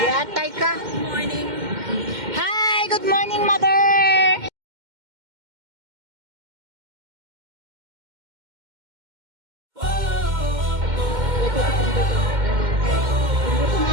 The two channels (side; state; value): left; late; 2.1 ms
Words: Yatay ka. Good morning. Hi, good morning, mother.